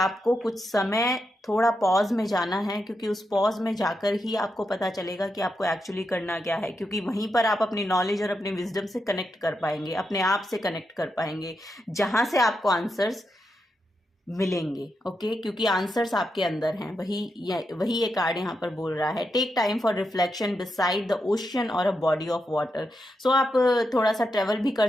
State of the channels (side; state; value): both; normal; correlation 0.85